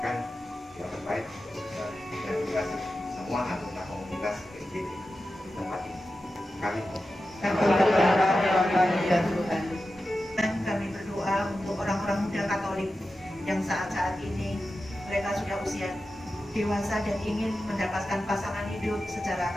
yang terbaik untuk saudara dan juga semua anggota komunitas PJB di tempat ini. Kami Dan kami berdoa untuk orang-orang muda Katolik yang saat-saat ini mereka sudah usia dewasa dan ingin mendapatkan pasangan hidup secara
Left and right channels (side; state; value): both; normal; correlation 0.92